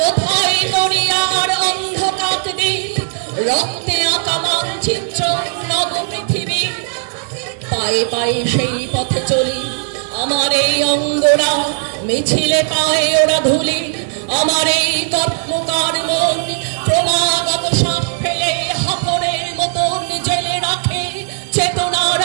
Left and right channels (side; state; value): left; silent; digital silence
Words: কোথায় গড়িয়ার অন্ধকার দিক, রক্তে আঁকা মানচিত্র নব পৃথিবী। পায়ে পায়ে সেই পথে চলি, আমার এই অঙ্গরা মিছিলে পায়ে ওরা ধুলি। আমার এই কর্মকার মন ক্রমাগত শ্বাস ফেলে হাফরের মতন জেলে রাখে চেতনার